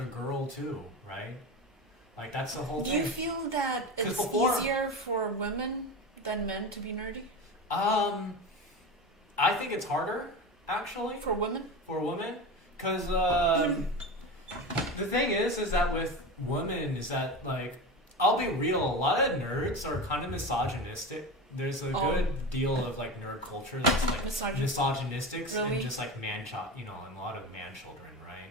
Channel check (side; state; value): both; normal; correlation 0.25